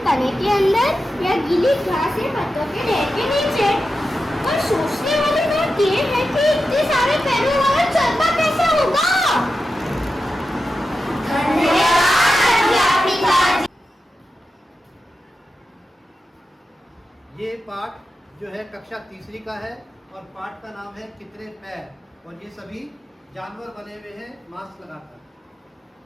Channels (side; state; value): both; normal; correlation 0.91